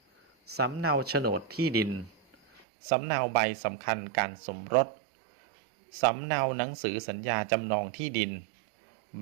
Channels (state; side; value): drops out; left; at 2.7 s